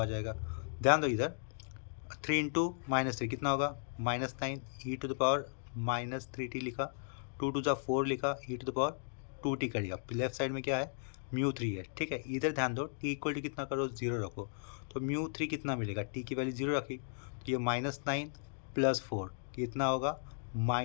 जाएगा। ध्यान दो इधर, 3 × -3 कितना होगा, -9, e⁻³ लिखा, 2 × 4 4 लिखा, e⁻² कर दिया। लेफ्ट साइड में क्या है, μ3 है, ठीक है। इधर ध्यान दो, t इक्वल टू कितना करो, 0 रखो, तो μ3 कितना मिलेगा, t की वैल्यू 0 रखी, तो ये -9 + 4 कितना होगा,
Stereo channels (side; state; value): right; silent; digital silence